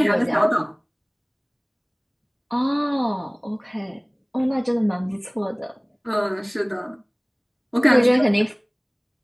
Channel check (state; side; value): identical; both; correlation 1.00